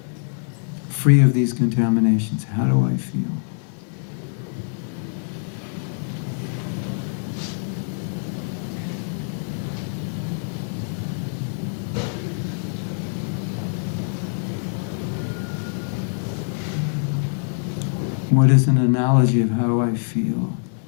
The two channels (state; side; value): silent; right; 63 dB below the other